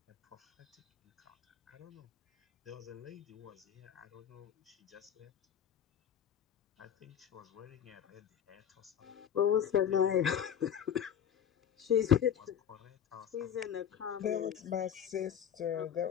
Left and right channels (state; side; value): quieter; right; 9.0 dB